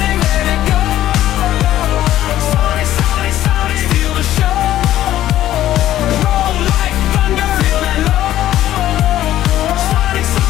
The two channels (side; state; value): right; quieter; 13.1 dB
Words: let it go. Sonic, Sonic, Sonic, steal the show. Roll like thunder, feel that low. Sonic,